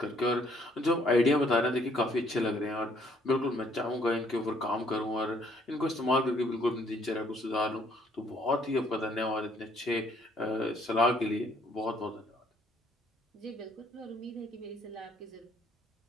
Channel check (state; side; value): normal; both; correlation 0.65